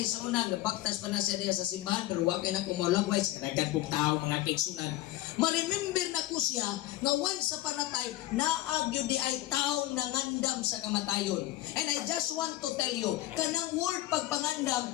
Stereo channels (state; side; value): quieter; right; 16.0 dB